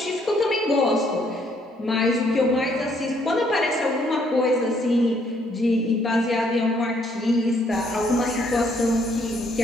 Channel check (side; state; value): both; normal; correlation 0.68